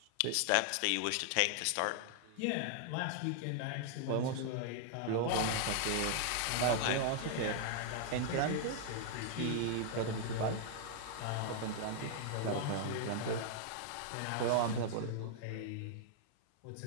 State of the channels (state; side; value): different; both; correlation -0.01